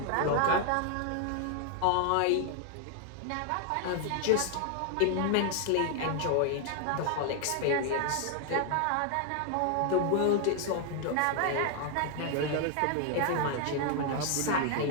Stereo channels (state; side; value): different; both; correlation 0.00